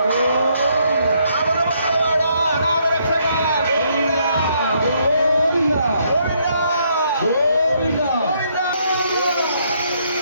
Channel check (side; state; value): both; inverted; correlation -0.72